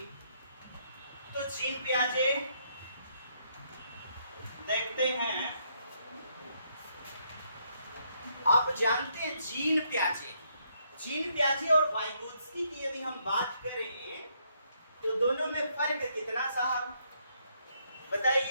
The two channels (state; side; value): inverted; both; correlation -0.73